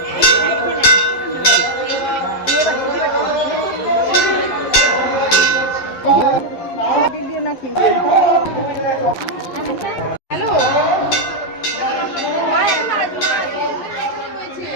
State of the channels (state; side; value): late; right; 11 ms